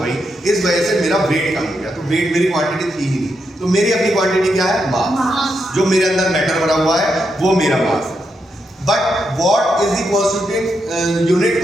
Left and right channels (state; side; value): normal; both; correlation 0.83